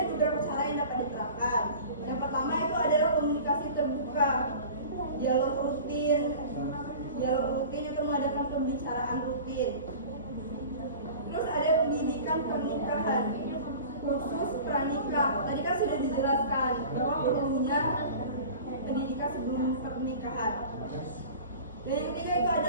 beberapa cara yang dapat diterapkan. Yang pertama itu adalah komunikasi terbuka, dialog rutin itu mengadakan pembicaraan rutin. Terus ada pendidikan pernikahan, khusus pranikah. Tadi kan sudah dijelaskan bahwa perlunya pendidikan sebelum pernikahan. Dan yang ketiga itu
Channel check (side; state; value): both; inverted; correlation -0.39